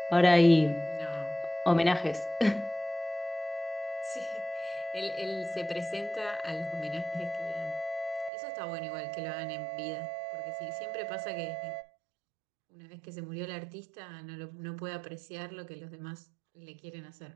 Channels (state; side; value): drops out; left; at 8.3 s